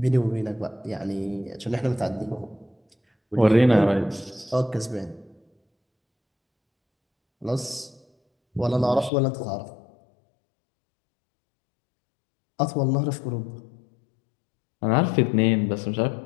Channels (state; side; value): drops out; right; at 9.1 s